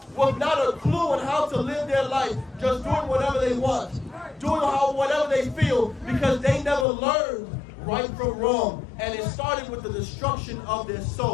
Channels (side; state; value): right; drops out; at 6.9 s